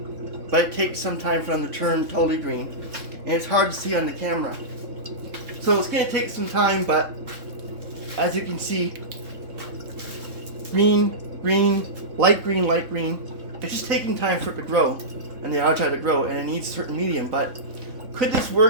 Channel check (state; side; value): late; left; 3.6 ms